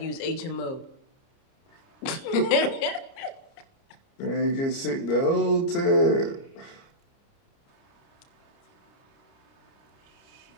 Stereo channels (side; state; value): right; late; 30 ms